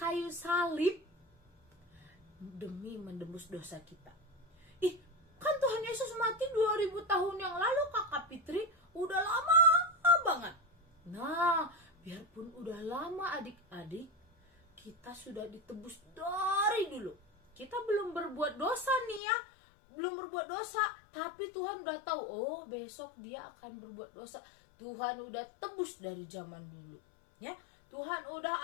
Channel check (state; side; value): drops out; right; at 19.2 s